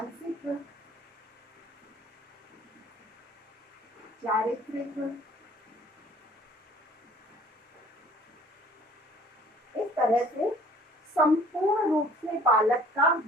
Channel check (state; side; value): normal; both; correlation 0.52